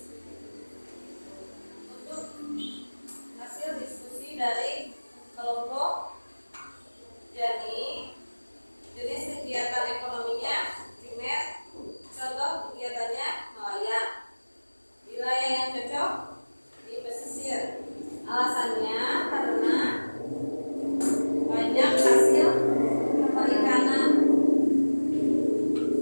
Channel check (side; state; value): both; inverted; correlation -1.00